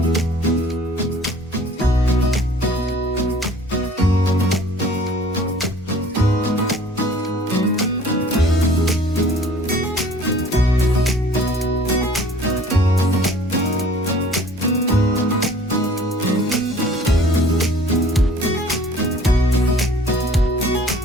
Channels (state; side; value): normal; both; correlation 0.51